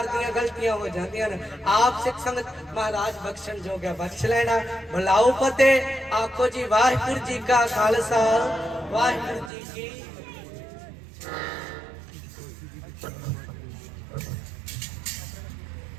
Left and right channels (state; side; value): drops out; left; at 9.5 s